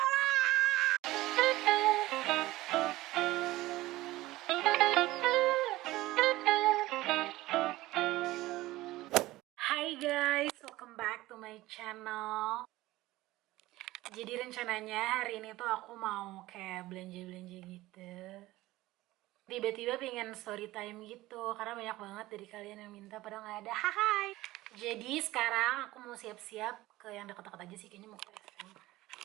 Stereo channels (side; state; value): left; quieter; 17.7 dB